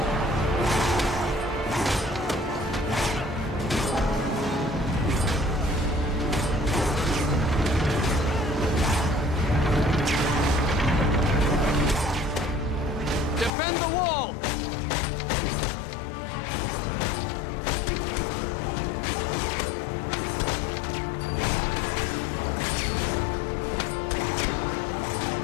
Defend the wall!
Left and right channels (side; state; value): right; drops out; at 13.5 s